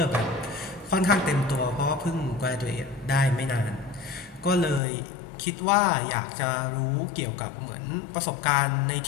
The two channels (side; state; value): right; drops out; at 4.8 s